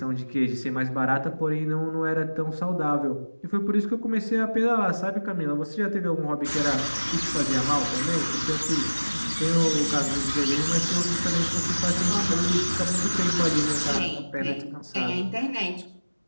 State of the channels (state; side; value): inverted; both; correlation -1.00